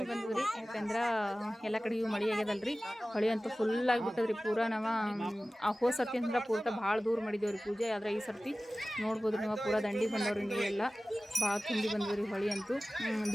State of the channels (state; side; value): normal; both; correlation 0.97